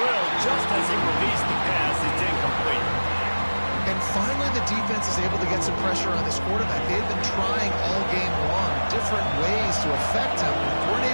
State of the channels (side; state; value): both; inverted; correlation -1.00